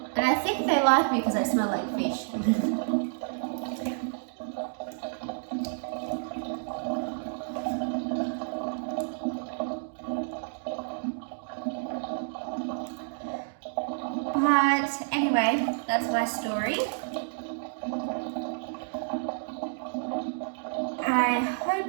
And I think they like me because I smell like fish. But anyway, that's my story. I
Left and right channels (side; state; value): left; silent; digital silence